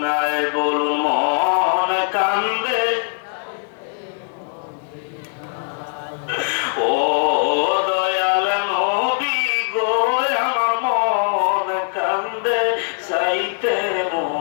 বলুন মন কান্দে। ও দয়াল নবী গো, আমার মন কান্দে যাইতে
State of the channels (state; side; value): silent; right; digital silence